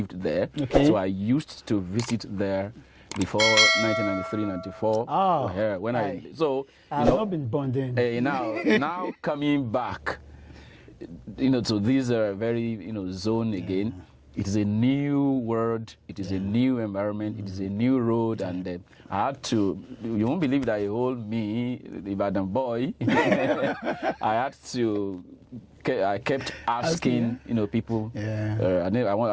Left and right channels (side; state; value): both; identical; correlation 1.00